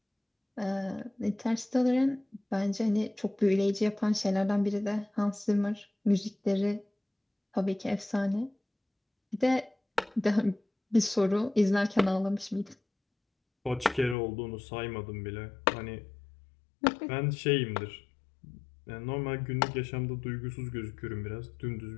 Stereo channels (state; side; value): drops out; right; at 14.2 s